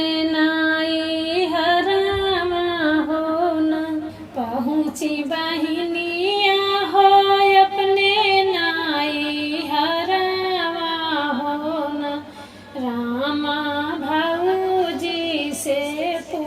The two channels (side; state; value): both; identical; correlation 1.00